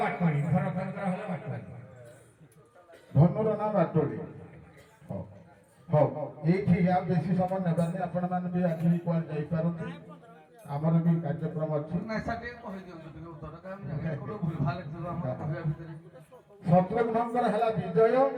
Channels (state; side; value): identical; both; correlation 1.00